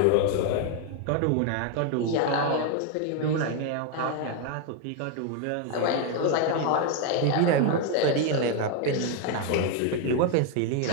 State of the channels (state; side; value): different; both; correlation 0.01